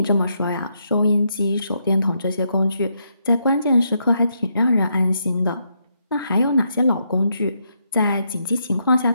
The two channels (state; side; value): inverted; both; correlation -0.79